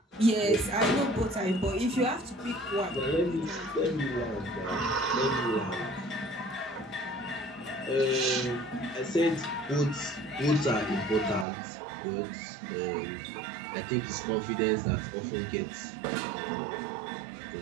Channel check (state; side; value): drops out; left; at 11.5 s